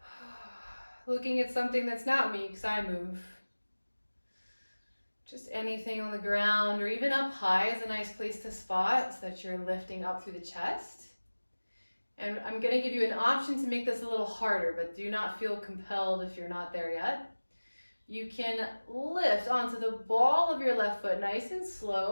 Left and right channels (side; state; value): both; inverted; correlation -1.00